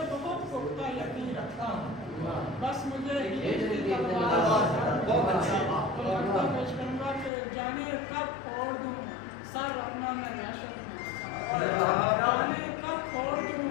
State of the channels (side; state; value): right; drops out; at 7.3 s